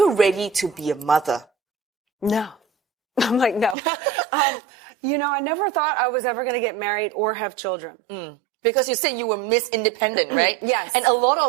ready to be a mother? No. I'm like, no. I never thought I was ever going to get married or have children. Because you said you were Miss Independent, right? Yes. And a lot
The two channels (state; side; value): drops out; left; at 3.8 s